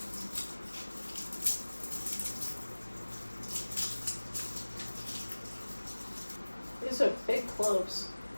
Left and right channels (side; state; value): both; inverted; correlation -1.00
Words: These are big cloves.